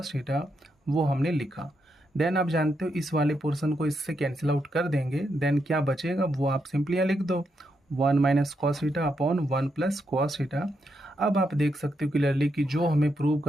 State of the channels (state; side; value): normal; both; correlation 0.82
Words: theta, वो हमने लिखा। देन आप जानते हो इस वाले पोर्शन को इससे कैंसिल आउट कर देंगे, देन क्या बचेगा वो आप सिंपली यहाँ लिख दो, 1 minus cos theta upon 1 plus cos theta. अब आप देख सकते हो क्लियरली कि जो हमें प्रूव